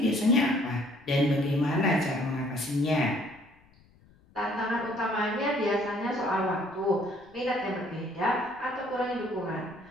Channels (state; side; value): noise; left; rumble, 29 dB below the sound